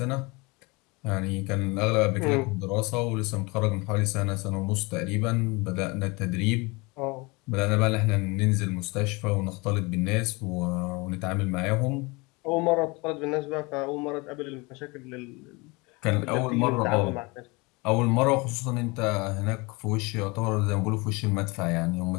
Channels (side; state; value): right; quieter; 26.2 dB